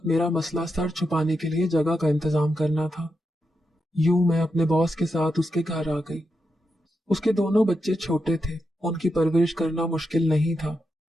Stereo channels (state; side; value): normal; both; correlation 0.86